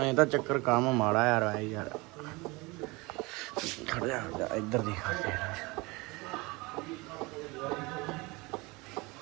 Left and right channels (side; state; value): left; quieter; 24.6 dB